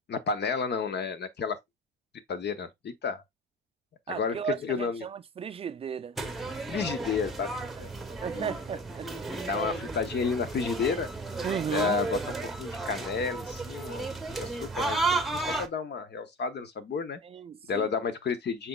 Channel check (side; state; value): both; normal; correlation 0.36